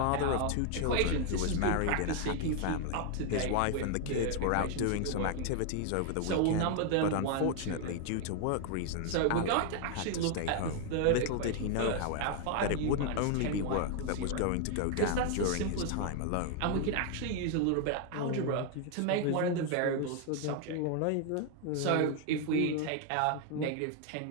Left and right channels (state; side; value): different; both; correlation 0.00